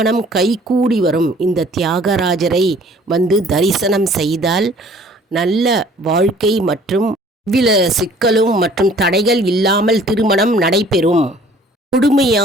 கைகூடி வரும். இந்த தியாகராஜரை தரிசனம் செய்தால் நல்ல வாழ்க்கை மற்றும் எவ்வித சிக்கலும் மற்றும் தடைகள் இல்லாமல் திருமணம் நடைபெறும்.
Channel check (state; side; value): normal; both; correlation 0.54